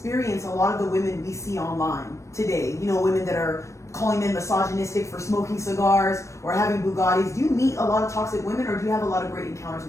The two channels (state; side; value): late; right; 0.14 ms